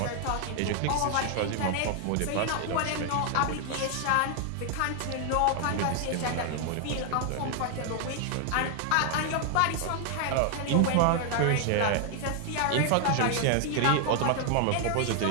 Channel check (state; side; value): different; both; correlation 0.00